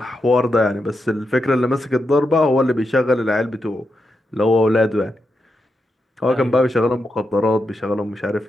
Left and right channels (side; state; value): both; normal; correlation 0.86